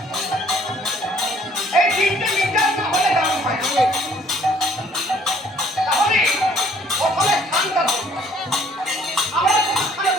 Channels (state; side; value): normal; both; correlation 0.60